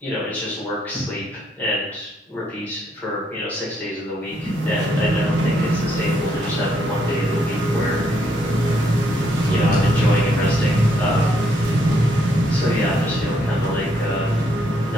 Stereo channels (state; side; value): normal; both; correlation 0.73